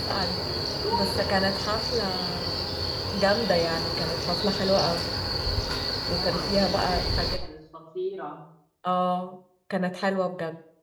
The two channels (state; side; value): identical; both; correlation 1.00